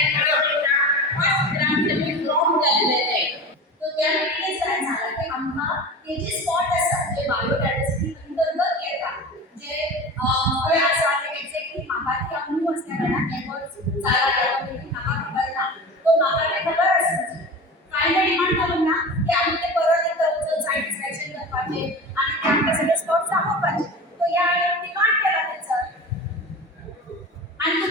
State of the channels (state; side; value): normal; both; correlation 0.32